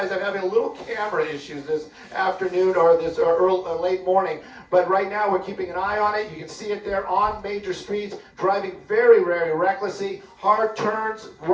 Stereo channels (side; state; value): both; identical; correlation 1.00